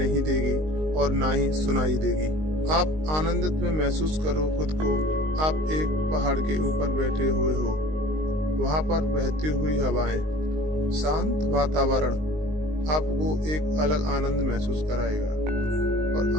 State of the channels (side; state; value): left; late; 19 ms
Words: देगी और ना ही सुनाई देगी। आप आनंदित में महसूस करो खुद को। आप एक पहाड़ के ऊपर बैठे हुए हो, वहां पर बहती हुई हवाएं, शांत वातावरण आपको एक अलग आनंद महसूस कराएगा। और